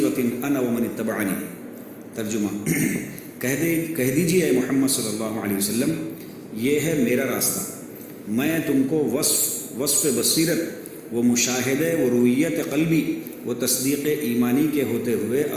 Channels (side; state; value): both; identical; correlation 1.00